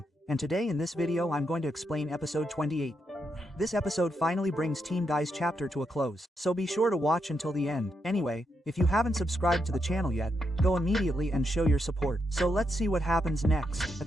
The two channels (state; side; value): normal; both; correlation 0.81